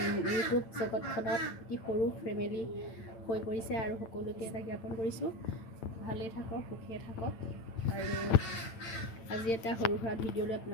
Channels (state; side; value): late; right; 9.0 ms